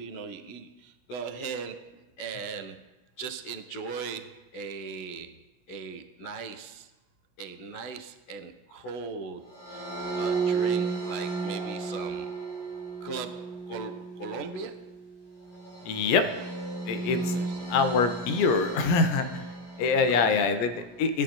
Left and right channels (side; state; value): right; late; 17 ms